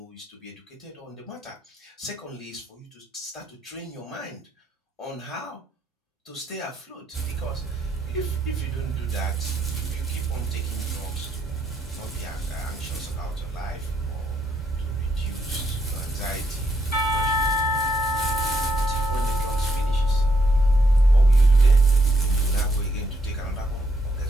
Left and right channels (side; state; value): both; normal; correlation 0.76